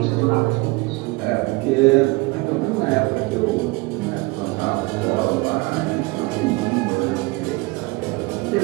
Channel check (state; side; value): quieter; left; 24.3 dB